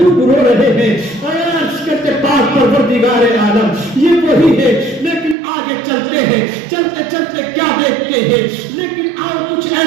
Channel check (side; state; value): left; drops out; at 5.4 s